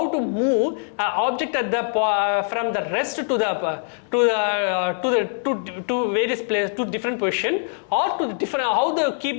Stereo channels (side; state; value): right; silent; digital silence